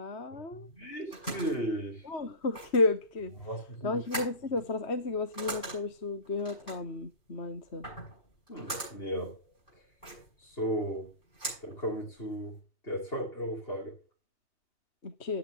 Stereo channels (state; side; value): late; right; 2.4 ms